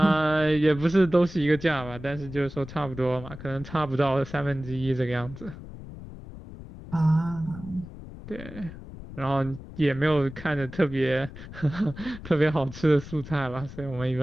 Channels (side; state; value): left; noise; rumble, 14 dB below the sound